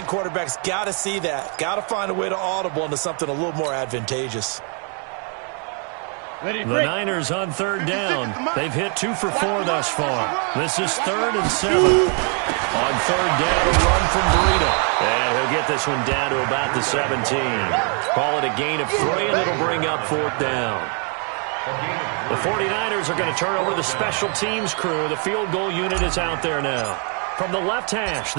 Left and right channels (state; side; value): quieter; left; 39.6 dB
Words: quarterbacks got to see that. Got to find a way to audible into something a little more advantageous. Ready, The break. Niners on 3rd down. They've hit 2 for 4 thus far. This is 3rd and 7. On 3rd down, a run from Breida. And he'll get this one down to about the 17. Call it a gain of 3, and it'll bring up 4th down. The 49ers are going to turn over the special teams crew. The field goal unit is out there now. From the left hash,